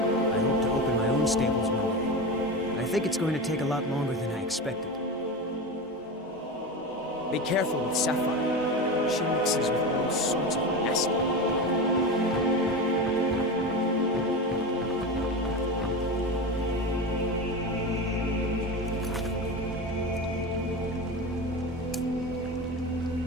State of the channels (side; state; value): both; normal; correlation 0.23